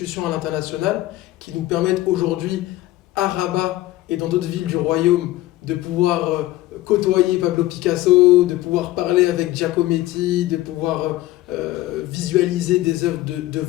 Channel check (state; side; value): quieter; right; 16.5 dB